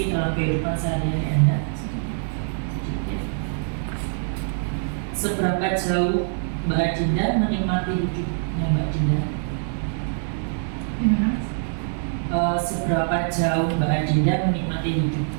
dalam kehidupan sehari-hari Anda? Sedikit. Seberapa jauh Mbak Adinda menikmati hidupnya Mbak Adinda? Gimana? Seberapa jauh Mbak Adinda menikmati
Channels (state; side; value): silent; left; digital silence